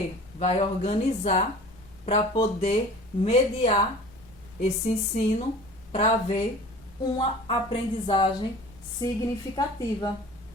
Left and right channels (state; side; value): normal; both; correlation 0.43